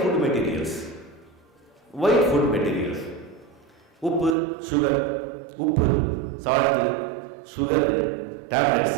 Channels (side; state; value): left; drops out; at 4.4 s